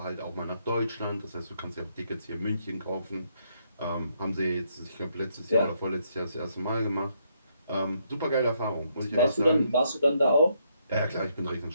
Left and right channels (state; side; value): inverted; both; correlation -0.74